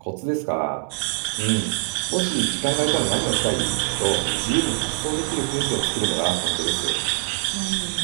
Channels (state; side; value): silent; left; 59 dB below the other